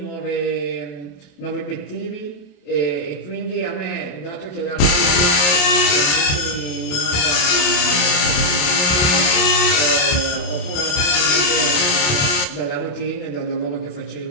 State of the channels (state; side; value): late; right; 28 ms